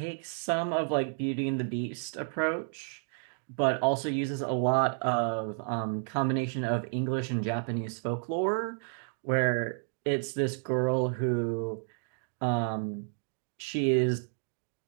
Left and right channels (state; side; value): silent; left; 57 dB below the other